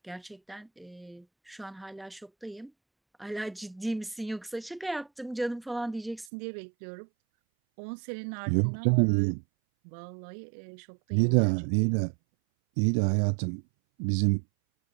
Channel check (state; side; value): drops out; left; at 6.2 s